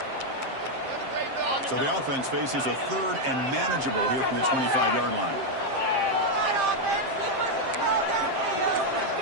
So the offense faces a third and manageable here from the 25-yard line.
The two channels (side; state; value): left; late; 7.6 ms